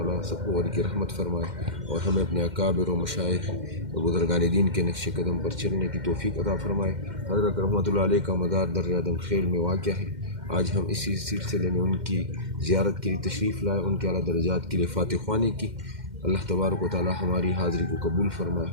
سب کو غرق رحمت فرمائے اور ہمیں اپنے اکابر و مشائخ اور بزرگان دین کے نقش قدم پر چلنے کی توفیق عطا فرمائے۔ حضرت رحمۃ اللہ علیہ کا مدار در آدم خیل میں واقع ہے۔ آج ہم اسی سلسلے میں ان کی زیارت کے لیے تشریف لائے، ان کے اعلیٰ درجات کے لیے فاتح خوانی کی۔ اللہ تبارک و تعالیٰ ہماری حاضری کو قبول فرمائے۔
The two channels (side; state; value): left; late; 2.1 ms